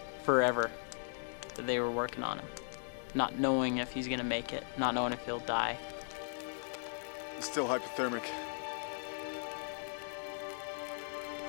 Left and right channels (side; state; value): right; silent; digital silence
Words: forever that they were working on him, not knowing if he's gonna make it, not knowing if he'll die. He's still hypothermic.